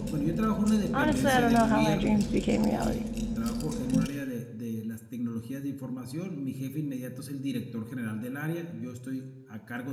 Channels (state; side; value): identical; both; correlation 1.00